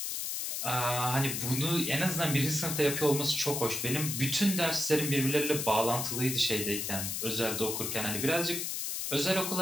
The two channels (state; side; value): noise; left; hiss, 2 dB below the sound